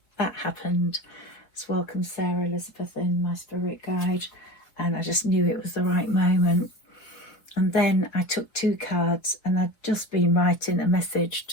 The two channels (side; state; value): right; late; 4.2 ms